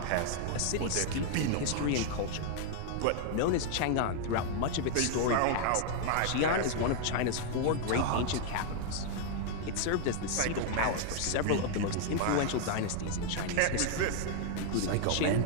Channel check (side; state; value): both; different; correlation 0.00